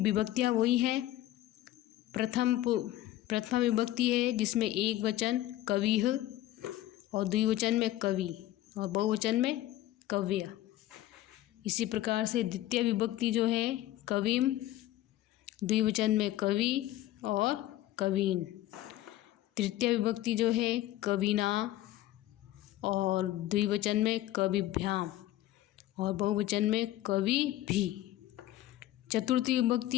वही हैं, प्रथमा विभक्ति है जिसमें एक वचन कविः और द्विवचन में कवि और बहुवचन में कव्य। इसी प्रकार से द्वितीय विभक्ति जो है कविम, द्विवचन में कवि और कवीन। तृतीय विभक्ति जो है कविना और द्विवचन में कविभ्याम और बहुवचन में कवि भी। चतुर्थी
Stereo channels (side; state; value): right; quieter; 14.6 dB